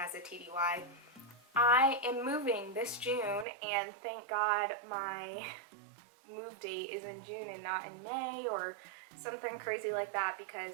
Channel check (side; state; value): left; drops out; at 3.5 s